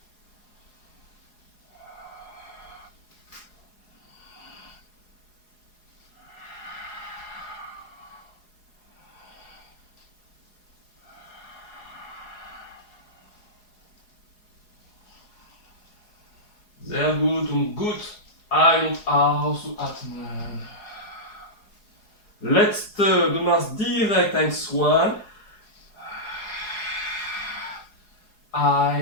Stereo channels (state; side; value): late; right; 4.8 ms